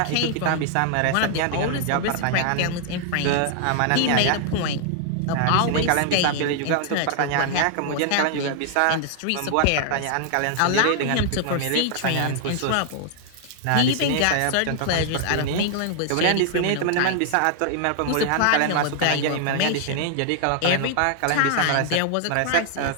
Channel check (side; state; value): both; different; correlation 0.00